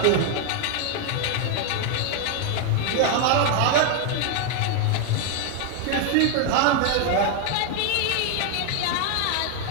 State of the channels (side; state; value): both; different; correlation 0.00